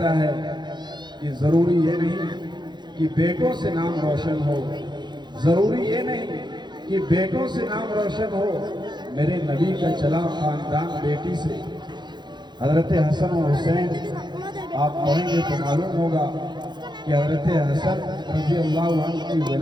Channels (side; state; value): left; late; 0.21 ms